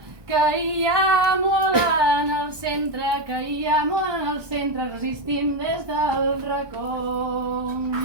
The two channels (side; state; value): left; late; 1.2 ms